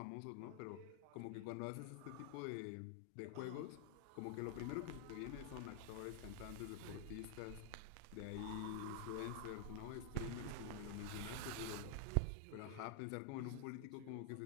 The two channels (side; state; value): both; different; correlation 0.00